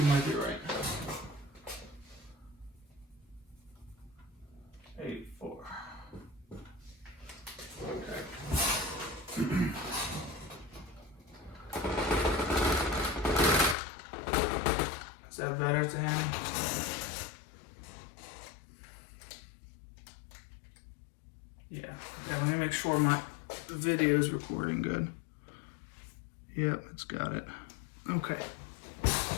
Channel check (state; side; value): drops out; right; at 13.8 s